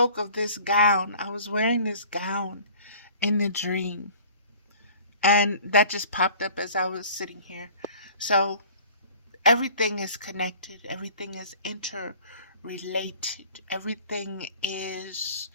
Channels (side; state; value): both; inverted; correlation -0.47